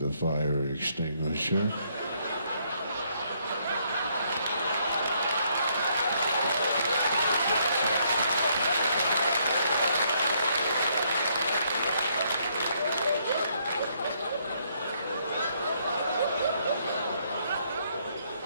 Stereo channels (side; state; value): both; inverted; correlation -0.71